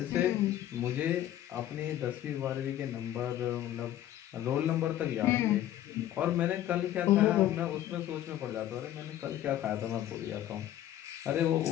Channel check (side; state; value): right; quieter; 12.5 dB